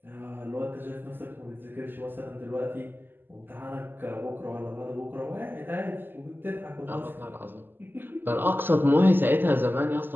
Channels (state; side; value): late; left; 0.095 ms